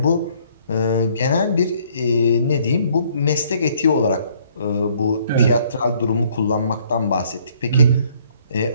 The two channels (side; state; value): both; inverted; correlation -0.63